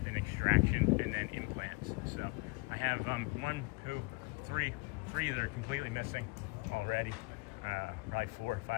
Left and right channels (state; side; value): quieter; right; 27.5 dB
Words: an extraction and then implants. So I have 1, 2, 3 that are completely missing already. Probably 4 or